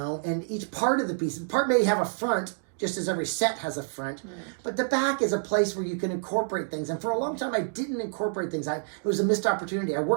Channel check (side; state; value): left; silent; digital silence